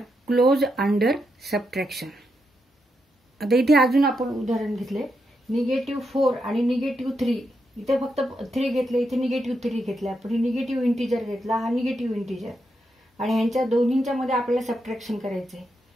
closed under subtraction. आता इथे अजून आपण उदाहरण घेतले. -4 आणि -3. इथे फक्त 3 घेतले, इथे -3 घेतले आपण. निगेटिव्ह इंटिजर घेतला, हा निगेटिव्ह इंटिजर, आणि ह्यांच्या दोन्हींच्या मध्ये आपल्याला सबट्रॅक्शन करायचं आहे.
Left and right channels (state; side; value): normal; both; correlation 0.83